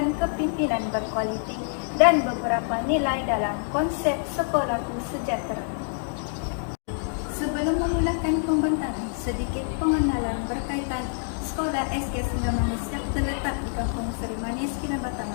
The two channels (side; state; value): right; silent; digital silence